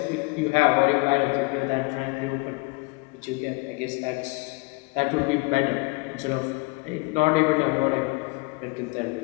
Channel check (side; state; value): right; quieter; 27.6 dB